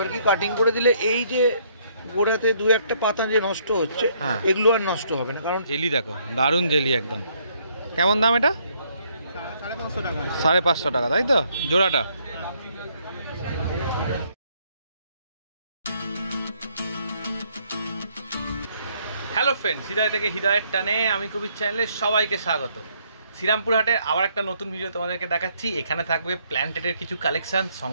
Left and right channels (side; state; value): both; inverted; correlation -0.68